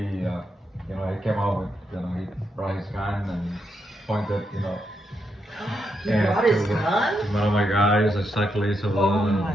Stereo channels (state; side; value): normal; both; correlation 0.81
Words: came out with, he brought his gun and pointed, He brought his gun? to one of my guys, exactly. So Oh my